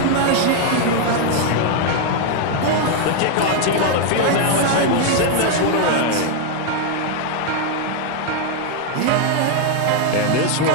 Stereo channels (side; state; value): both; different; correlation 0.00